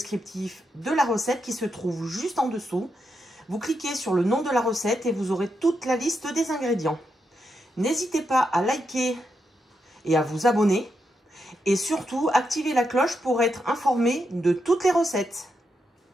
de la recette qui se trouve juste en dessous. Vous cliquez sur le nom de la recette et vous aurez toute la liste des ingrédients. N'hésitez pas à liker et à vous abonner. Et surtout, activez la cloche pour être informé de toutes les recettes.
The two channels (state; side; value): normal; both; correlation 0.84